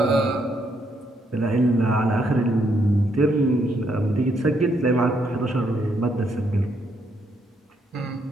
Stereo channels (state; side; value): normal; both; correlation 0.74